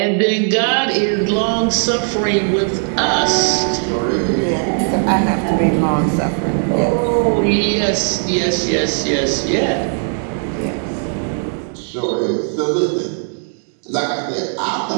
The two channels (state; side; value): silent; left; 56 dB below the other